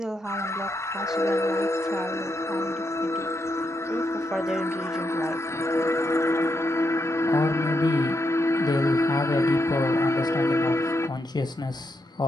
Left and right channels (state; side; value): normal; both; correlation 0.81